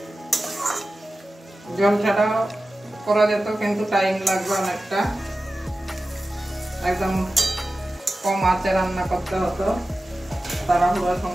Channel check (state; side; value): normal; both; correlation 0.94